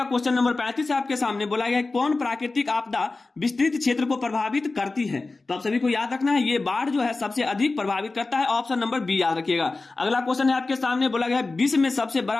क्वेश्चन नंबर 35 आपके सामने बोला गया है कौन प्राकृतिक आपदा विस्तृत क्षेत्र को प्रभावित करती है? तो आप सभी को याद रखना है, ये बाढ़ जो है सबसे अधिक प्रभावित करता है। ऑप्शन नंबर बी याद रखिएगा। अगला क्वेश्चन है आपके सामने बोला गया है विश्व में सबसे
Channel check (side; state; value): right; quieter; 3.5 dB